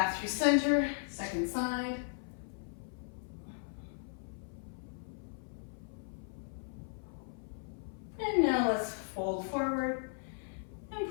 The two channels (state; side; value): silent; right; 53 dB below the other